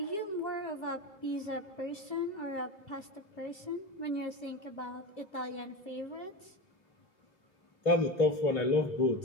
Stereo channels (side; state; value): right; late; 2.5 ms